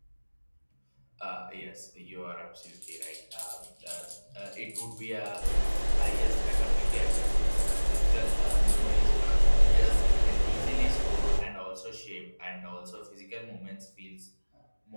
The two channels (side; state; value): both; inverted; correlation -1.00